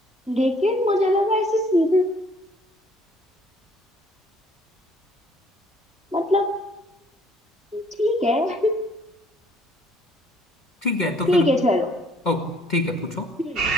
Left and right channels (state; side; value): normal; both; correlation 0.60